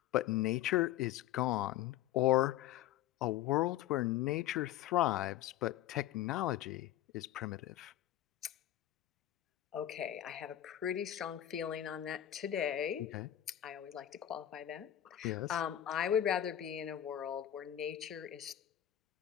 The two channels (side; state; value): right; quieter; 12.4 dB